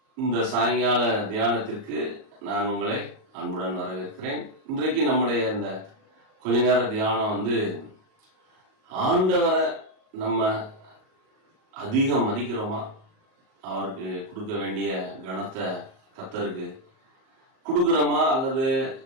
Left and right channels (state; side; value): late; left; 38 ms